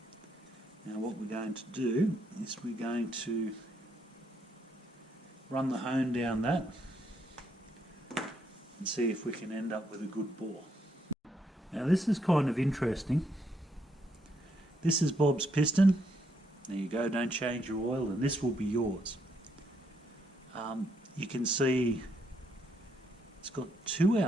Now what we're going to do is we're going to run the hone down that and see if we can end up with a good bore. Now this is kind of interesting. This is Bob's piston. There you go, don't change your oil, and this will be yours. You can see it's got two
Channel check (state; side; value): normal; both; correlation 0.75